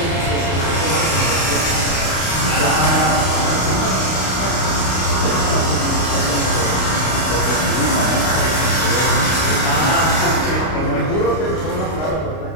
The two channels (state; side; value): late; right; 32 ms